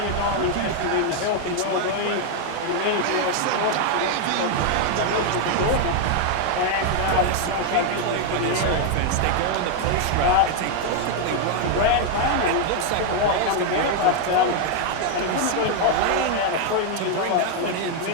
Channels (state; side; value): different; both; correlation 0.00